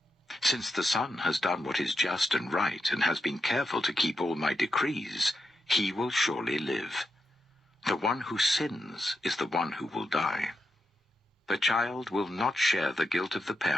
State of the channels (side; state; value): both; normal; correlation 0.85